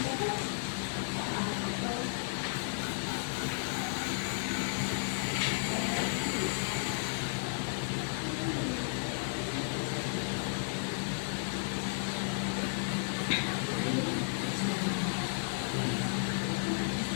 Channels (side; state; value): right; silent; digital silence